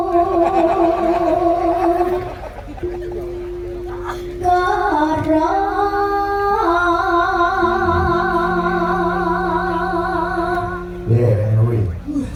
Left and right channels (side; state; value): both; identical; correlation 1.00